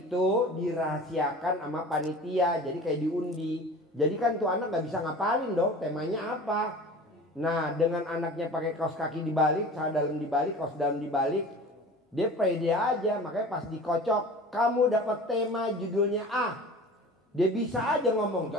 dirahasiakan sama panitia, jadi kayak diundi. Jadi kan tuh anak nggak bisa ngapalin dong temanya apa. Nah dengan anaknya pakai kaos kaki dibalik, celana dalam dibalik, kaos dalam dibalik, dia pede aja. Makanya pas dikocok, kamu dapat tema judulnya A, dia bisa aja ngomong.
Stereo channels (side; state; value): both; normal; correlation 0.39